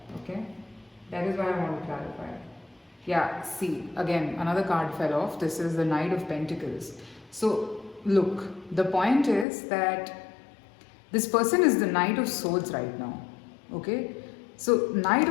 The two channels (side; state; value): right; drops out; at 9.5 s